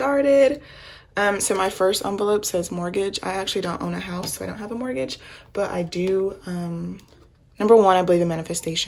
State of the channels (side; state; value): both; identical; correlation 1.00